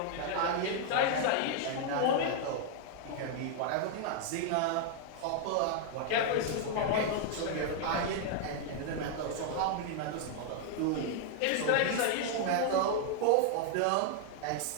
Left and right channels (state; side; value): different; both; correlation 0.00